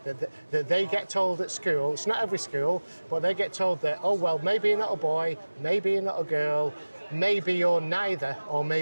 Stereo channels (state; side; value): inverted; both; correlation -1.00